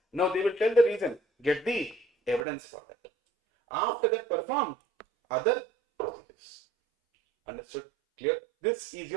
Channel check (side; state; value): left; drops out; at 2.5 s